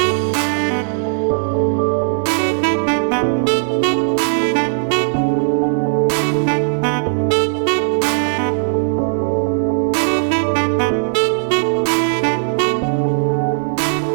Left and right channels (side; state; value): left; silent; digital silence